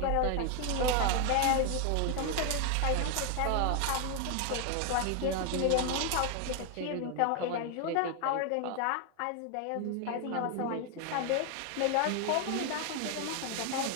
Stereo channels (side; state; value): both; different; correlation 0.01